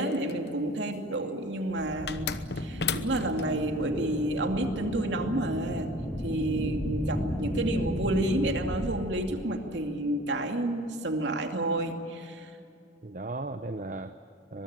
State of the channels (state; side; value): normal; both; correlation 0.45